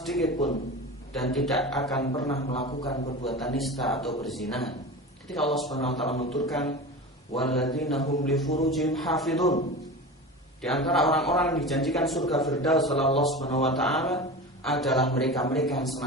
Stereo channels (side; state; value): both; normal; correlation 0.30